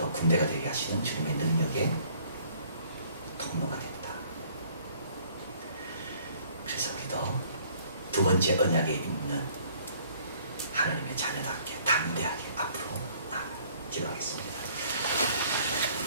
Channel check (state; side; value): inverted; both; correlation -0.58